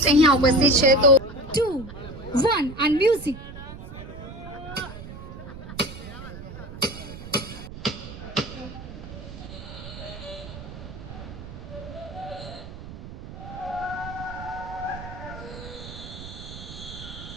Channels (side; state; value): right; noise; rumble, 12 dB below the sound